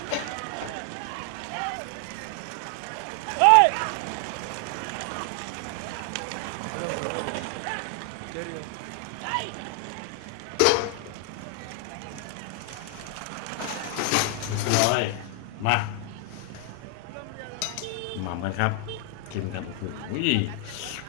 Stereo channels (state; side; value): different; both; correlation 0.00